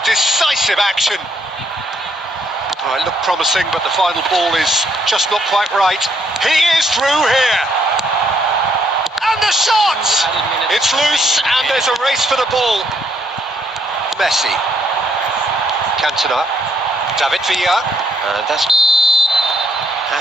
decisive action. Oh, it looked promising, but the final ball is just not quite right. He is through here. And the shot! It's loose, and there's a race for the ball. Messi. Cantona. David Villa. And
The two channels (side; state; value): both; normal; correlation 0.71